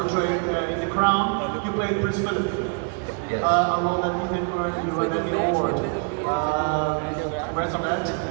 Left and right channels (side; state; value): left; quieter; 38.6 dB